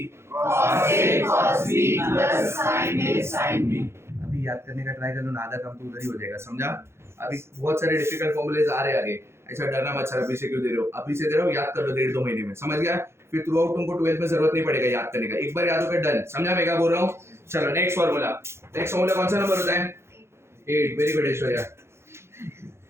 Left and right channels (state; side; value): late; left; 0.12 ms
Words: cos a cos b plus sin a sin b। अभी याद करने का try कर लो ना, आधा काम तो उधर ही हो जाएगा। समझा? अभी बहुत सारे डिफिकल्ट फॉर्मूलेज आ रहे हैं आगे। ऐसा डरना मत सर अभी से क्यों दे रहे हो, अभी से दे रहे हो, याद कर लो 1.5-2 महीने में। समझ गया? फिर थ्रू आउट तुमको 12th में जरूरत नहीं पड़ेगा याद करने का, एक बार याद होकर डन। समझा मैं क्या बोल रहा हूँ? चलो नेक्स्ट फॉर्मूला। नेक्स्ट फॉर्मूला कौन सा नंबर होता है? 8। Very good Aishwarya.